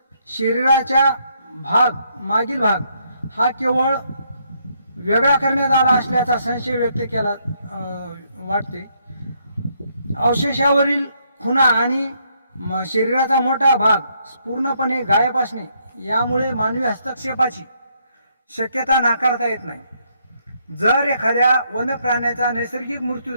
शरीराचा मागील भाग हा केवळ वेगळा करण्यात आला असल्याचा संशय व्यक्त केला वाटते. अवशेषावरील खुणा आणि शरीराचा मोठा भाग पूर्णपणे गायब असणे यामुळे मानवी हस्तक्षेपाची शक्यता नाकारता येत नाही. जर एखाद्या वन्यप्राण्याचा नैसर्गिक मृत्यू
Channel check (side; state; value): both; inverted; correlation -0.73